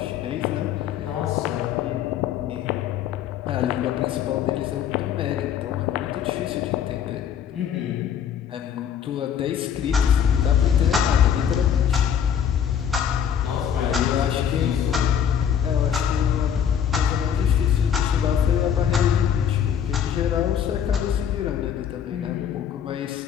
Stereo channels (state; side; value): quieter; right; 8.6 dB